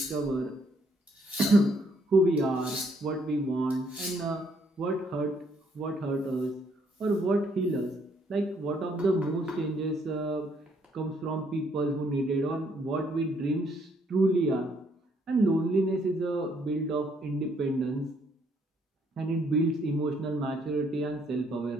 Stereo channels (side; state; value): both; normal; correlation 0.69